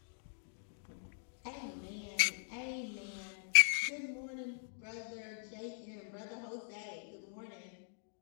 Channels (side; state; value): right; silent; digital silence